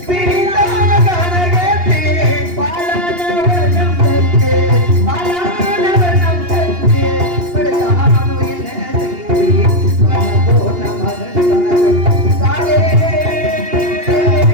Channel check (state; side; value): late; left; 2.8 ms